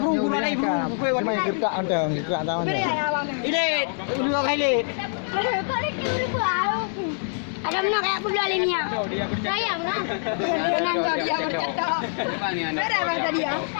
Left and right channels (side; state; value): right; silent; 62 dB below the other